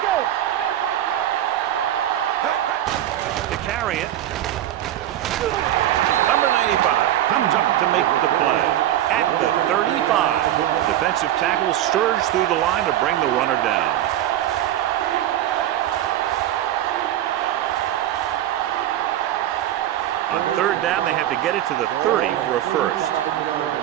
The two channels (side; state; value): left; quieter; 12.5 dB